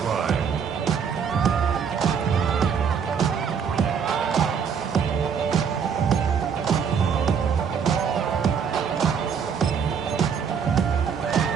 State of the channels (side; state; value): left; quieter; 6.9 dB